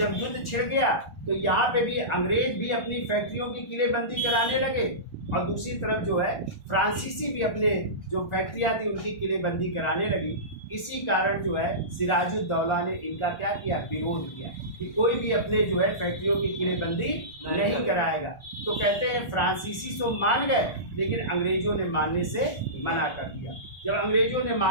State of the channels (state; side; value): late; right; 1.4 ms